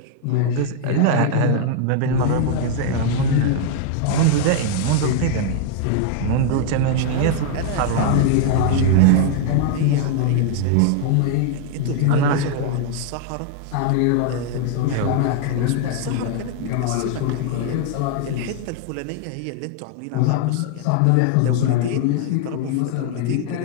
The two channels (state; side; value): different; both; correlation 0.00